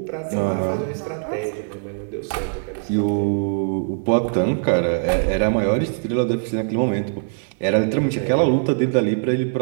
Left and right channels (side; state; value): left; silent; 58 dB below the other